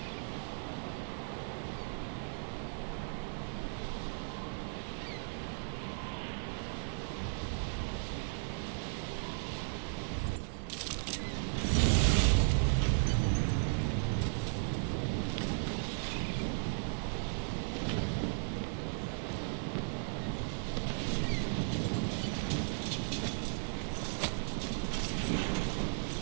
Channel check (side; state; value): left; silent; 54 dB below the other